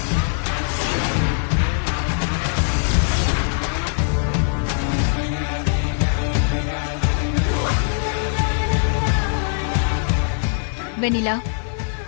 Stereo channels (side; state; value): right; silent; 57 dB below the other